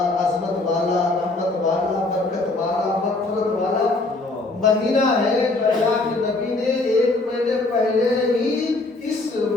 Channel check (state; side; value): quieter; right; 3.1 dB